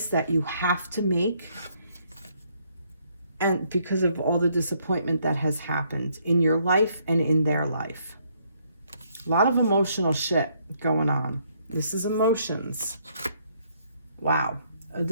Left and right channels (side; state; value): both; inverted; correlation -0.70